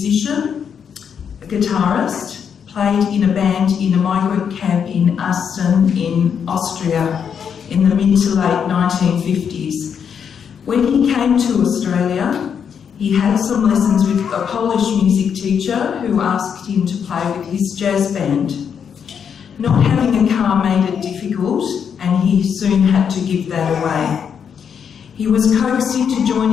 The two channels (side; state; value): right; quieter; 7.4 dB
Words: a guitarist, played in a band in a migrant camp in Asten in Austria in the mid to late 1950s. When he came to Australia, he had some lessons with a Polish music teacher who asked him to play with his jazz band. Not having a car made it difficult, and he soon had to give that away. He was coaxed into